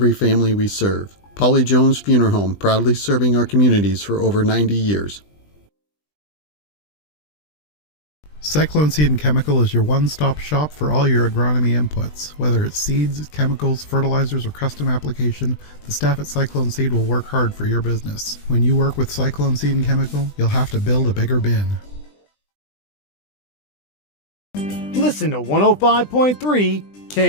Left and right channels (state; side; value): late; right; 20 ms